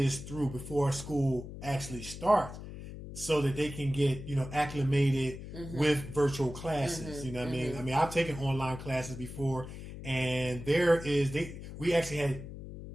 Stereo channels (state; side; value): noise; left; hum, 11 dB below the sound